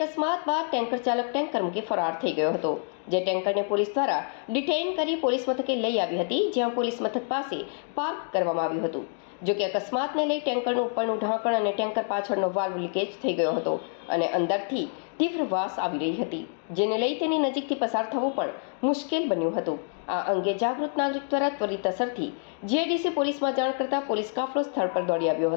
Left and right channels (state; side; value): silent; right; 60 dB below the other